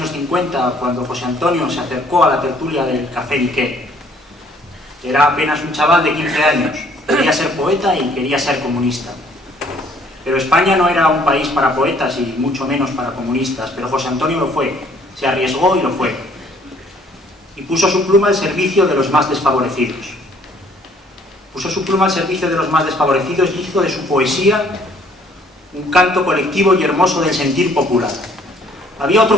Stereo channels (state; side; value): normal; both; correlation 0.61